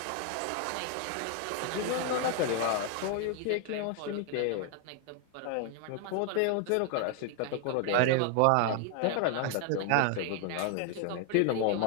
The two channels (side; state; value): both; different; correlation 0.00